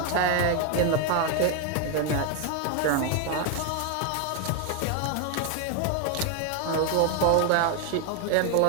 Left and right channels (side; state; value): both; different; correlation 0.01